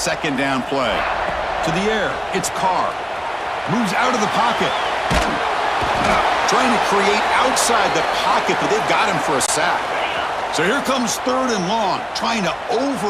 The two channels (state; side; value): identical; both; correlation 1.00